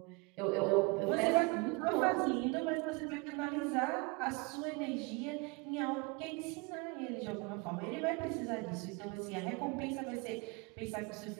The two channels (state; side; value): quieter; left; 28.6 dB